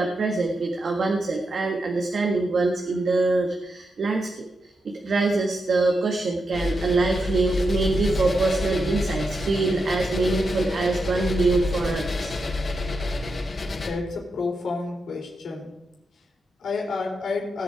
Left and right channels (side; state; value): both; normal; correlation 0.85